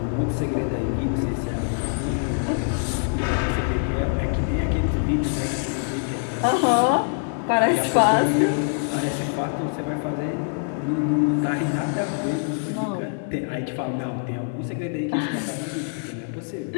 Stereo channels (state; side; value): silent; right; digital silence